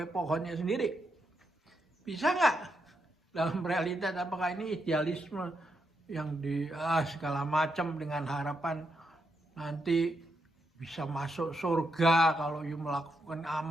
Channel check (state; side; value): normal; both; correlation 0.82